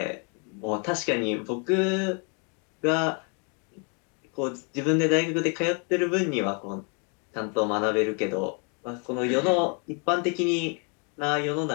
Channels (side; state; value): right; quieter; 36.9 dB